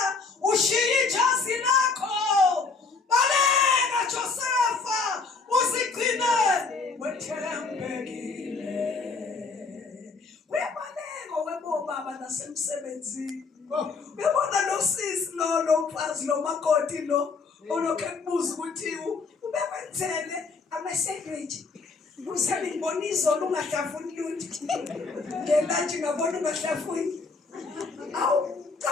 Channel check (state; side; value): quieter; right; 4.4 dB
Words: ushiya ijazi lakho baleka Josepha uzigcine wethembekile uyabaleka webobaba nasemsebenzini uyabona lo sisi lo mfazi lo makoti lo olokhe kubuza ukuthi ubekwenzele ama-sandwich usale ngibona izolo ungahlafuni lutho ngelantshi ngabona ungahlafuni awu